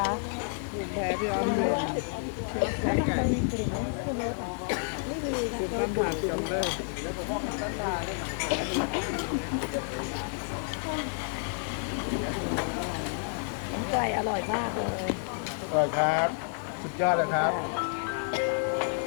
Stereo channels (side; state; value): right; silent; 58 dB below the other